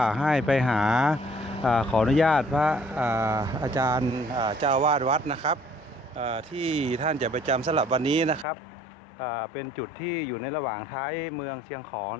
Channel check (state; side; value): drops out; right; at 8.5 s